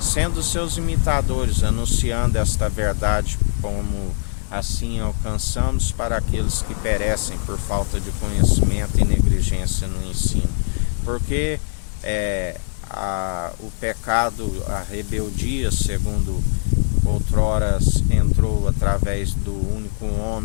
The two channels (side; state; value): right; silent; digital silence